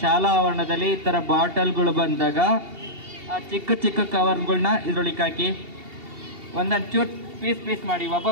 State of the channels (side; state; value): left; late; 2.7 ms